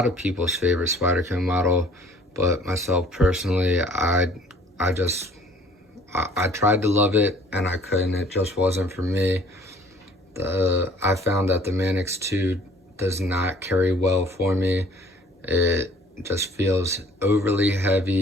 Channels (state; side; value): normal; both; correlation 0.54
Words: of people's favorite Spyderco model, but myself personally, I tried to love it and I couldn't. It just wasn't for me. I found that the Manix 2 does not carry well for me. It just feels overly